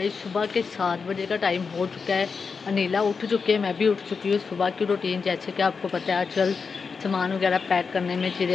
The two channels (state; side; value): quieter; right; 5.2 dB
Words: सुबह के 7 बजे का टाइम हो चुका है। अनीला उठ चुके हैं, मैं भी उठ चुकी हूँ। सुबह की रूटीन जैसे कि आपको पता है आजकल सामान वगैरह पैक करने में,